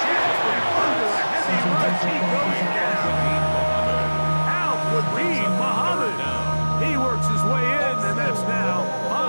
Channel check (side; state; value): both; inverted; correlation -1.00